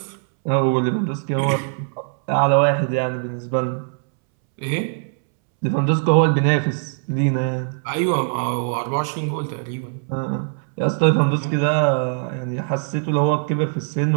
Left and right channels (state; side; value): silent; left; 65 dB below the other